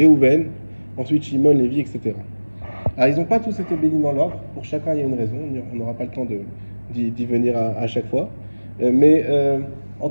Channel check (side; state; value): both; inverted; correlation -1.00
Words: ensuite Shimon, Lévi, etc. Alors ils n'ont pas tous été bénis dans l'ordre, pour chacun il y a une raison, on n'aura pas le temps d'y venir à chaque fois. Mais en